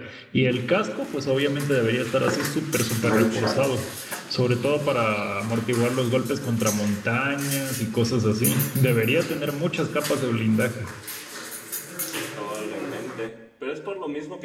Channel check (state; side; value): identical; both; correlation 1.00